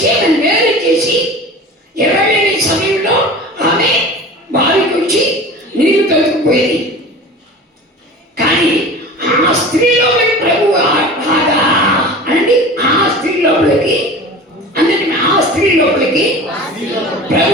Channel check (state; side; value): normal; both; correlation 0.37